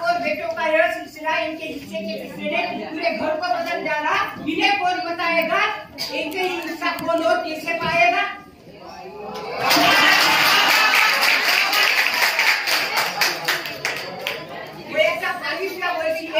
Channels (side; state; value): both; identical; correlation 1.00